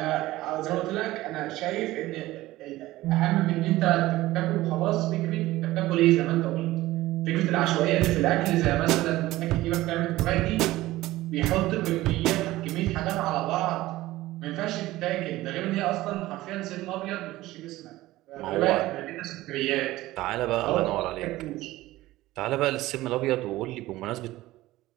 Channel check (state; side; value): quieter; left; 17.1 dB